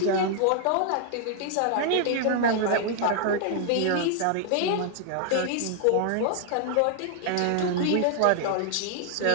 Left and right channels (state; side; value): different; both; correlation 0.00